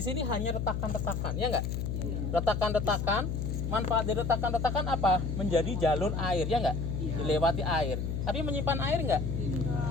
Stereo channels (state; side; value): noise; left; hum, 2 dB below the sound